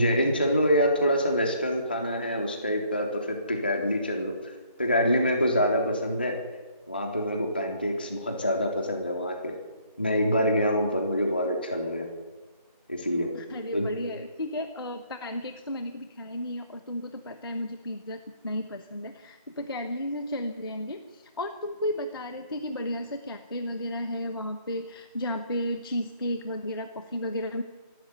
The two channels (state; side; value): inverted; both; correlation -0.63